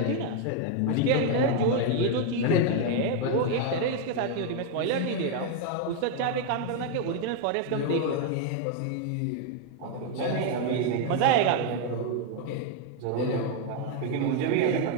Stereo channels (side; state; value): both; different; correlation 0.01